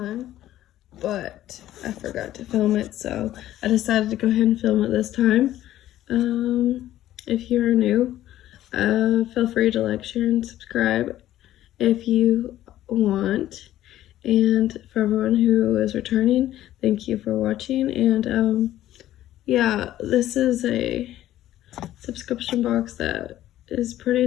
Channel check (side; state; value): right; quieter; 13.5 dB